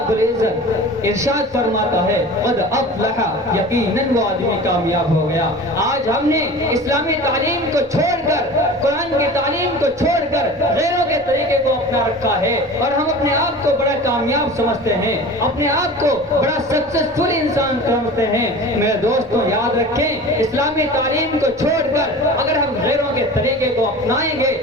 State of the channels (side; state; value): both; normal; correlation 0.37